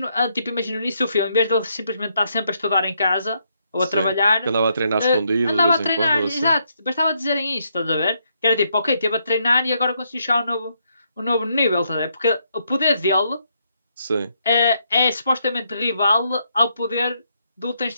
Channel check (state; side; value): inverted; both; correlation -0.76